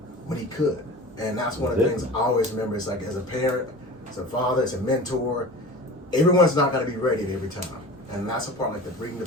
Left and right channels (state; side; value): normal; both; correlation 0.36